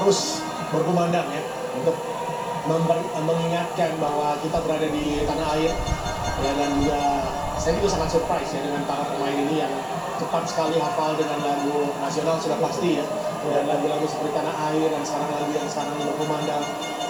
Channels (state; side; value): noise; right; hiss, 29 dB below the sound